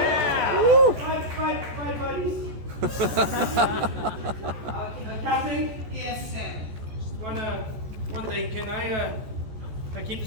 Bye, buddies. Captain? Yes, Sam. Just one thing. Can I keep the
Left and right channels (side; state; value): left; late; 14 ms